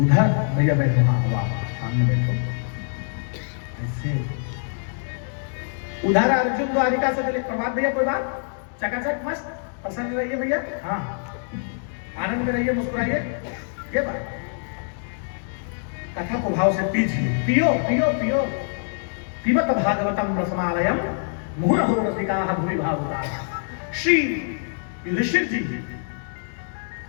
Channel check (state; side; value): silent; right; 62 dB below the other